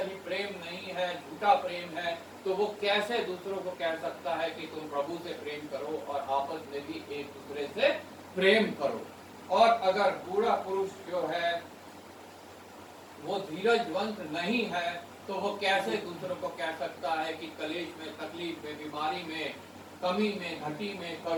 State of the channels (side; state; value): both; identical; correlation 1.00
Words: ही प्रेम नहीं है, झूठा प्रेम है, तो वो कैसे दूसरों को कह सकता है कि तुम प्रभु से प्रेम करो और आपस में भी एक दूसरे से प्रेम करो। और अगर बूढ़ा पुरुष जो है वो धीरजवंत नहीं है तो वो कैसे दूसरों को कह सकता है कि कलेश में, तकलीफ में, बीमारी में, कमी में, घटी में,